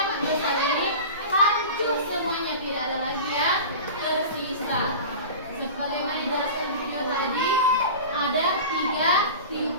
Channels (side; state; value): both; inverted; correlation -0.33